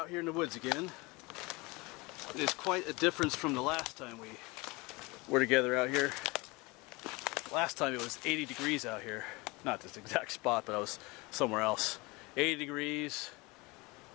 here in the woods again. It is quite a difference from the last time we were together out here. Last time it was 80 degrees out here. Not this exact spot, but I was somewhere else. 80 degrees,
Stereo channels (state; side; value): quieter; right; 24.7 dB